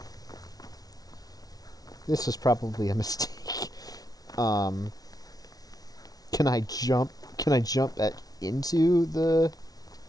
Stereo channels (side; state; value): right; late; 0.18 ms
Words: This is probably a mistake. Can I jump? Can I jump back into the